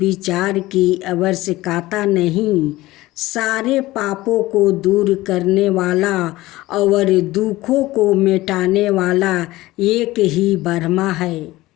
की आवश्यकता नहीं। सारे पापों को दूर करने वाला और दुखों को मिटाने वाला एक ही ब्रह्मा है।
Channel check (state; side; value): quieter; right; 18.1 dB